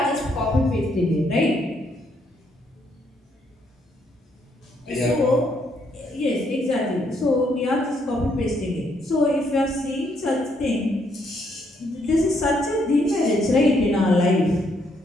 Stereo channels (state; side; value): normal; both; correlation 0.73